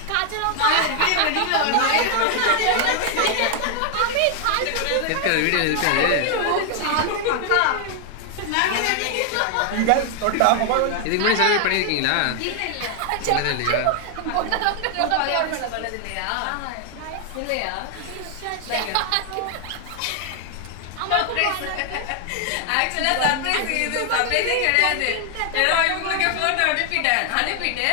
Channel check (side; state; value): both; different; correlation 0.00